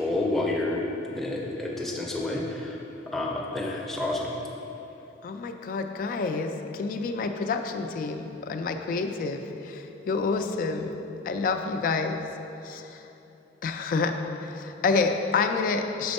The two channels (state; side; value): quieter; right; 3.3 dB